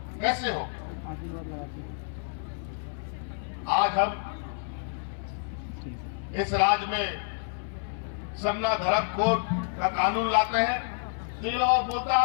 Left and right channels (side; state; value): right; silent; 59 dB below the other